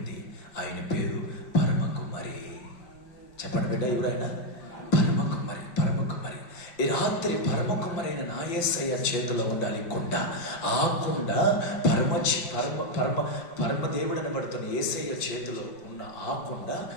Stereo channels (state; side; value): late; right; 5.9 ms